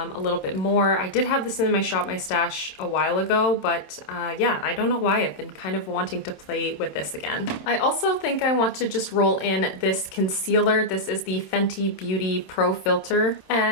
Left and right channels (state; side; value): late; right; 27 ms